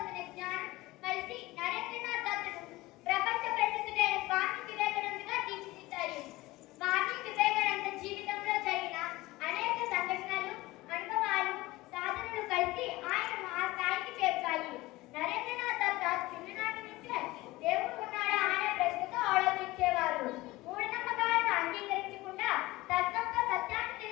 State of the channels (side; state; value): right; quieter; 19.5 dB